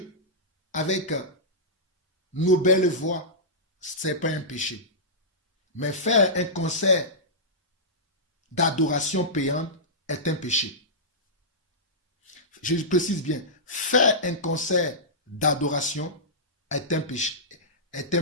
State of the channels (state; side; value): normal; both; correlation -0.15